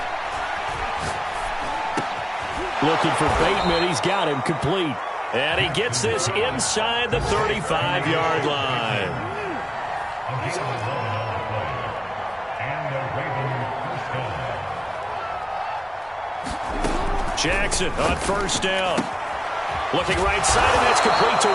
Looking for Bateman. He's got him complete. And he gets this inside the 35-yard line. Jackson on 1st down. Looking right side, and that's complete to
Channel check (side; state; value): both; identical; correlation 1.00